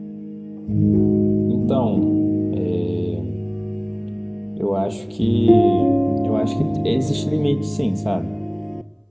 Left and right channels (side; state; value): both; identical; correlation 1.00